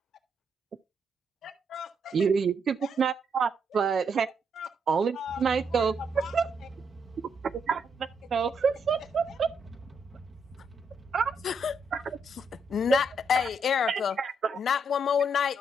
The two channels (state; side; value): normal; both; correlation 0.76